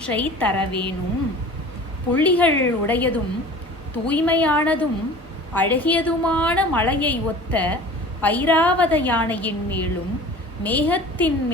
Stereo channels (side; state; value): both; normal; correlation 0.42